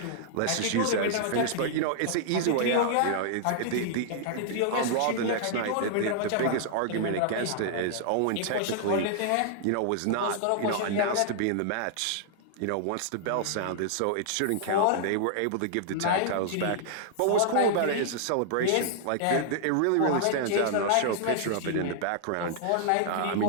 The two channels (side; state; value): both; different; correlation -0.01